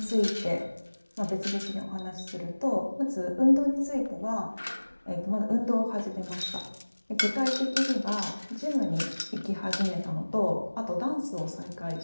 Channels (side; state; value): both; inverted; correlation -1.00